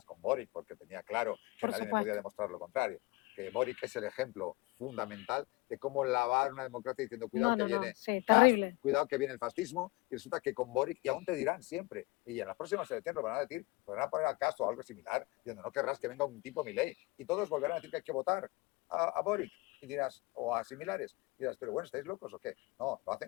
con Boric, porque tenía claro que nadie me podía demostrar lo contrario. Que Boric es el ejemplo fundamental de cómo lavar una democracia diciendo cuidado que viene Kast, cuidado que viene el fascismo, y resulta que con Boric, y aún te dirán siempre, y en las próximas elecciones lo van a decir, lo van a poner a Kast o algo similar, diciendo no querrás que venga un tipo Milei, y todos volverán a decir que hay que votar a Boric, y dirás, o a similares, y dirás, pero bueno, ¿estáis locos o qué? No, lo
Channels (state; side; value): quieter; right; 23.9 dB